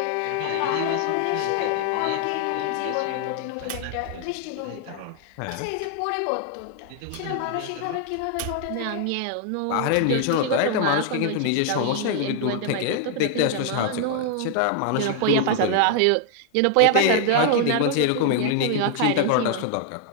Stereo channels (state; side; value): different; both; correlation 0.00